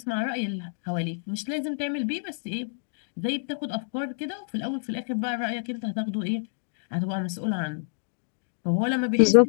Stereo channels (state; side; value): silent; right; digital silence